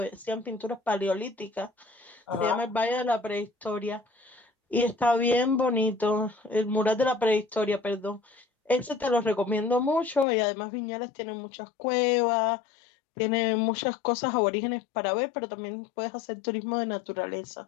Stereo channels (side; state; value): right; drops out; at 10.2 s